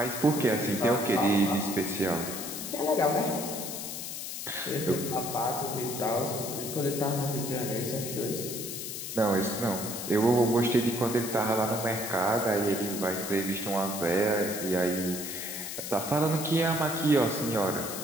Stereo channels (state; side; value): noise; left; hiss, 6 dB below the sound